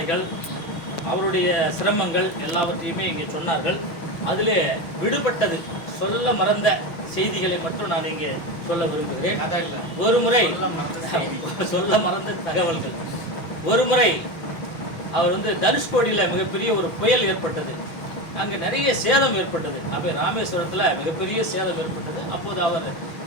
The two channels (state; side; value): late; right; 6.1 ms